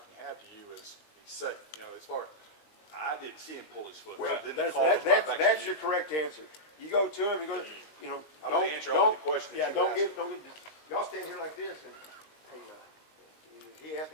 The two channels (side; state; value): right; late; 19 ms